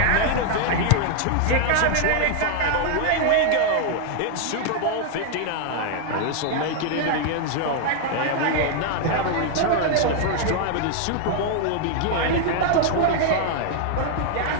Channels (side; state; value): both; different; correlation 0.00